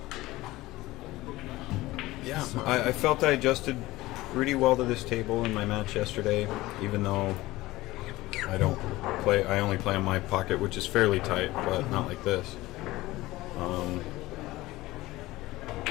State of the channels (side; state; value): right; quieter; 18.5 dB